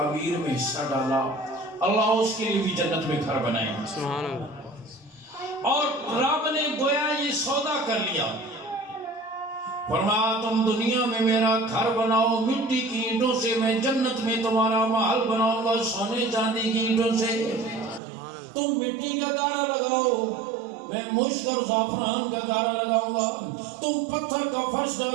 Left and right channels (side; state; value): left; drops out; at 18.0 s